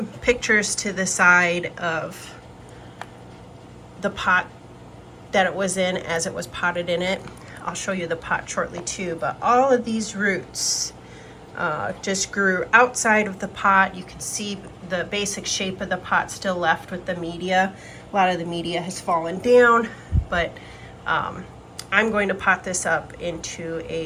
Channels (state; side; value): identical; both; correlation 1.00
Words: pictures to the side of the pot that it was in as it was potted in it. I'll show you the pot shortly too, but all of these roots just grew outside of the pot. You can see the basic shape of the pot still left with the media. A lot of the media has fallen down, but I'm going to pot this up into